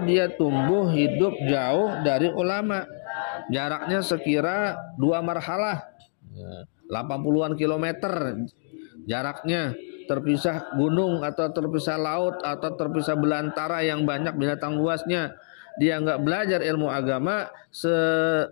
dia tumbuh hidup jauh dari ulama. Jaraknya sekira 2 marhalah, 80-an kilometer jaraknya, terpisah gunung atau terpisah laut atau terpisah belantara yang banyak binatang buasnya. Dia enggak belajar ilmu agama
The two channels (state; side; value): silent; right; digital silence